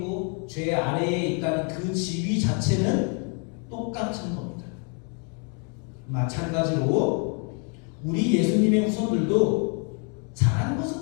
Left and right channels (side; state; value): right; quieter; 38.6 dB